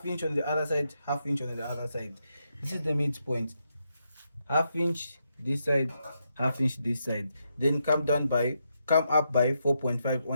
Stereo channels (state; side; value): inverted; both; correlation -0.82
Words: inch on the other side, half inch on the other side. This is the midpoint. Half inch this side, half inch this side. Then come up by 4.5